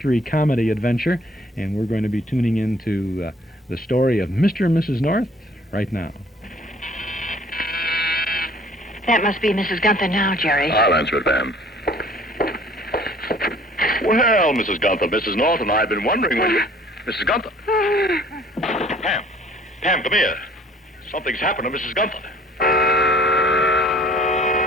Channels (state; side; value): normal; both; correlation 0.54